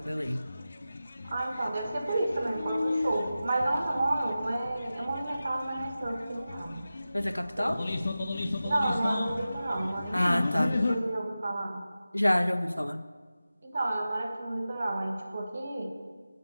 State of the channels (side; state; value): both; inverted; correlation -0.94